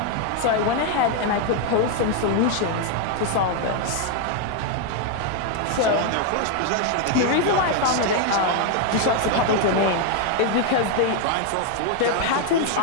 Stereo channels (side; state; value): both; different; correlation 0.00